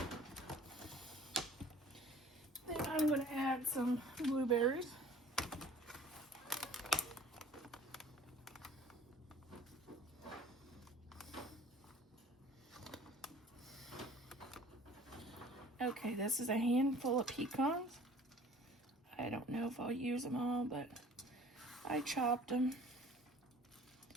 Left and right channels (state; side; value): normal; both; correlation 0.49